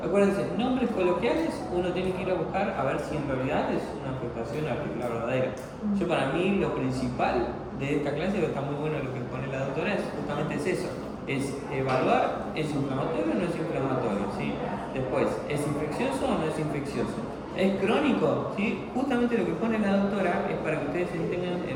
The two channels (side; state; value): both; identical; correlation 1.00